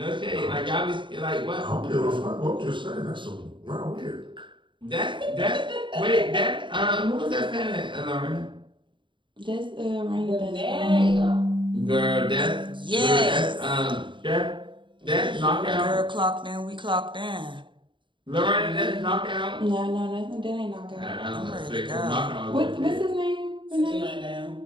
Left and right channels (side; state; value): left; late; 0.23 ms